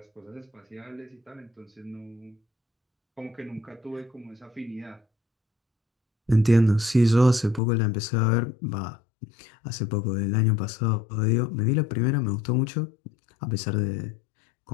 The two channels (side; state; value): right; drops out; at 7.6 s